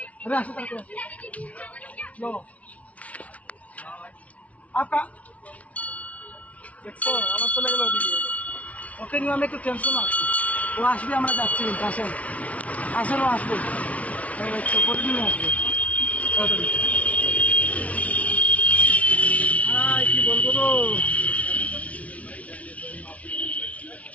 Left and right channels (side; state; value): right; late; 0.066 ms